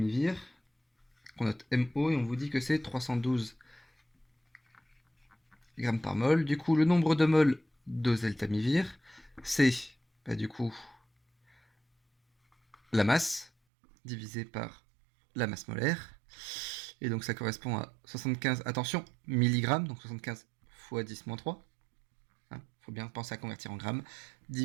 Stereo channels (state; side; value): drops out; left; at 13.5 s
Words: qu'on note MO, et on vous dit que c'est 312 grammes par mol. Du coup, le nombre de moles d'oseltamivir, c'est du coup la masse divisé par la masse molaire. Et donc ça correspond à 75, attention, milligrammes, donc 75 fois 10-3. Faut bien penser à convertir en grammes,